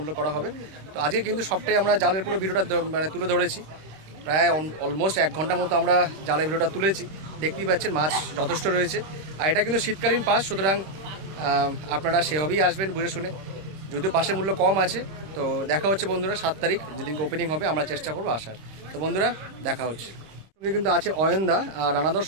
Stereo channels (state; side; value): late; left; 26 ms